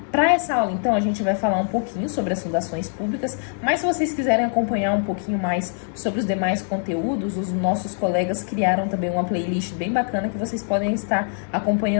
Para essa aula, então, a gente vai falar um pouquinho sobre as fundações públicas, mas se vocês quiserem acompanhar um pouquinho mais sobre os demais conteúdos, os nossos colegas criaram também uma playlist bem bacana que vocês podem estar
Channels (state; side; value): silent; right; digital silence